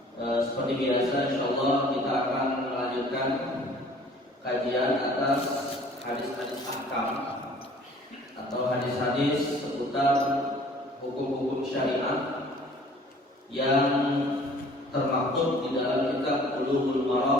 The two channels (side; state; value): both; normal; correlation 0.52